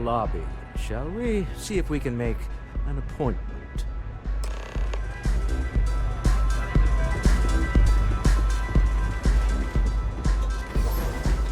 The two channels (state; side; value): identical; both; correlation 1.00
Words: shall we? See if we can make an appointment.